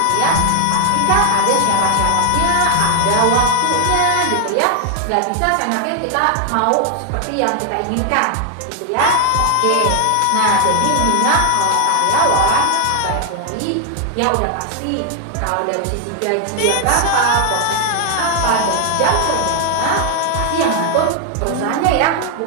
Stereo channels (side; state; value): both; different; correlation 0.00